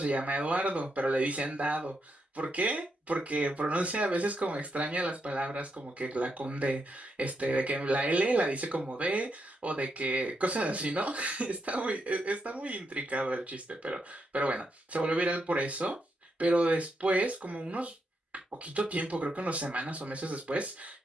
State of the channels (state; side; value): normal; both; correlation 0.81